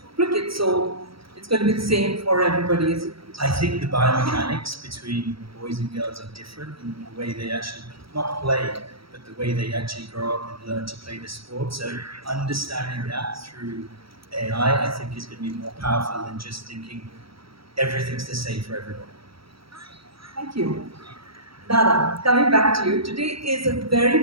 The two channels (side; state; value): left; late; 0.75 ms